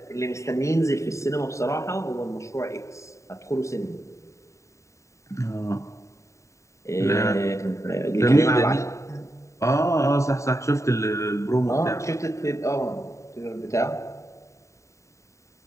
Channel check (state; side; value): late; right; 0.14 ms